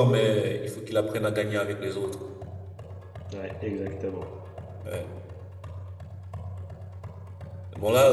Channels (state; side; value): identical; both; correlation 1.00